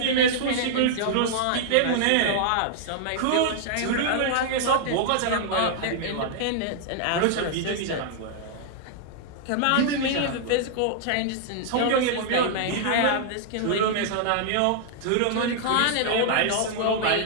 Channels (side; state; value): both; different; correlation -0.01